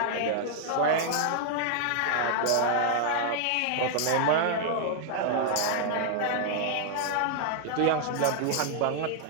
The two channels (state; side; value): different; both; correlation 0.00